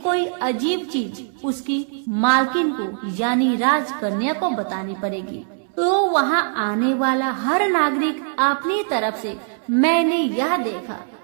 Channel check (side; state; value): left; silent; 65 dB below the other